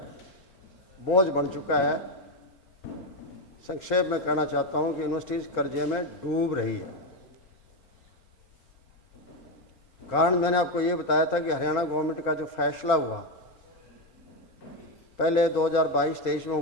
बोझ बन चुका है। संक्षेप में कहना चाहता हूं कि यूनिवर्सिटीज़ कर्जे में डूब रही है। कारण मैंने आपको ये बताया था कि हरियाणा गवर्नमेंट का जो फैसला हुआ, पहले 2022-23 में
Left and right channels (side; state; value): right; late; 4.4 ms